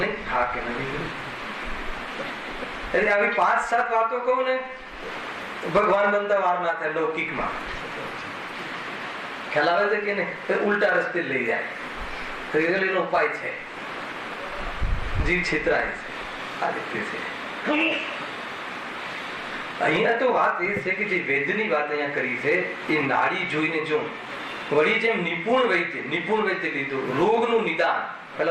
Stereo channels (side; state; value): both; identical; correlation 1.00